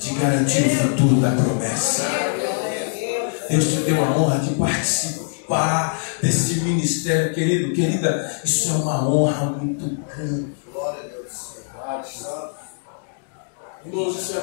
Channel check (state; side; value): silent; right; digital silence